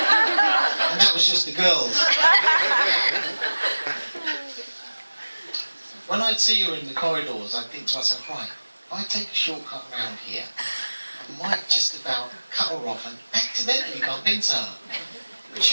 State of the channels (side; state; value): both; inverted; correlation -1.00